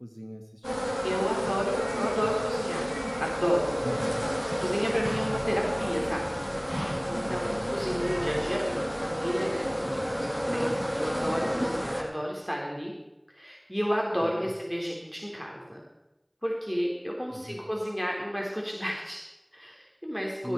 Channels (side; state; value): both; identical; correlation 1.00